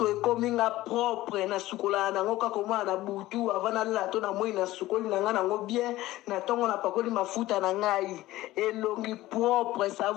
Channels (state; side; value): quieter; right; 16.7 dB